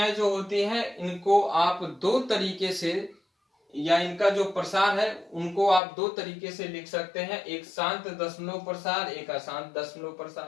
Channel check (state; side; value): drops out; right; at 5.8 s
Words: जो होती हैं इनको आप दो तरीके से, या इनका जो प्रसार है उनको आप दो तरीके से लिख सकते हैं, एक शांत दशमलव प्रसार, एक अशांत दशमलव